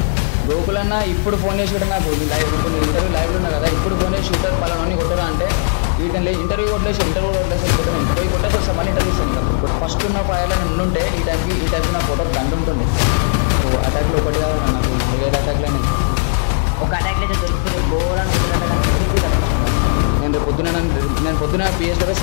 గోకులన్నా. ఇప్పుడు ఫోన్ చేసి నాకు ఇప్పుడు ఇంటర్వ్యూ లైవ్లో ఉన్నా కదా, ఇప్పుడు ఫోన్ చేసి షూటర్ పలాన్ని కొట్టదా అంటే వీళ్ళని ఇంటర్వ్యూ కొట్టలేసి కొట్టేసి మళ్ళీ ఇంటర్వ్యూ ఇస్తాను. ఫస్ట్ ఉన్న ఫైల్ ఉండుంటే ఈ టైంకి నా ఫోటో బంద్ ఉంటుంది. అటాక్లో ఒకటి వేరే అటాక్లో ఒక అటాక్లో అయితే దొరికిపోతే బోర్ అనుకుంటుందంటే కానీ తిరిగి తప్పించుకున్నాను. నేను పొద్దున పిఎస్ కూడా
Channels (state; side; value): silent; right; digital silence